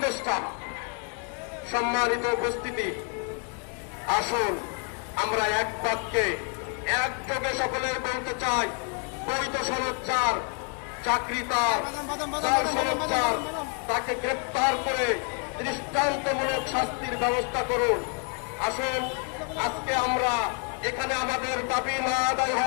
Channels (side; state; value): right; quieter; 37.2 dB